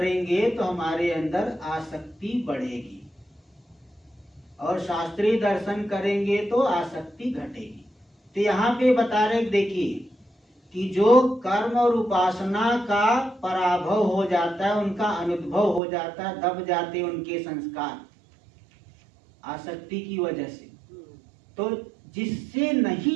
तो हमारे अंदर आसक्ति बढ़ेगी, और शास्त्रीय दर्शन करेंगे तो आसक्ति घटेगी। तो यहाँ पे बता रहे, देखिए कि जो कर्म और उपासना का पराभव हो जाता है, उनका अनुद्भव हो जाता है, दब जाते उनके संस्कार आसक्ति की वजह से, तो जिससे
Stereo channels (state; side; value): drops out; left; at 15.8 s